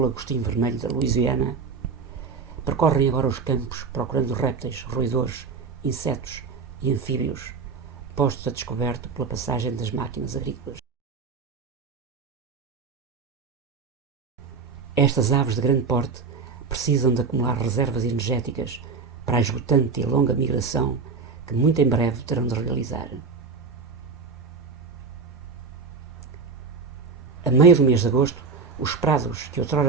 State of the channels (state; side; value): quieter; left; 5.0 dB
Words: vermelho da Louisiana, percorrem agora os campos procurando répteis, roedores, insetos e anfíbios, postos a descoberto pela passagem das máquinas agrícolas. Estas aves de grande porte precisam de acumular reservas energéticas para a esgotante e longa migração que muito em breve terão de realizar. A meio do mês de agosto, os prados que